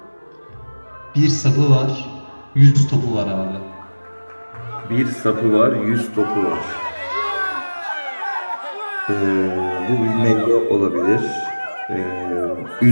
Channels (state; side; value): inverted; both; correlation -1.00